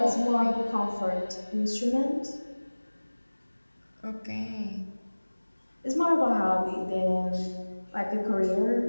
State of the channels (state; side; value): inverted; both; correlation -1.00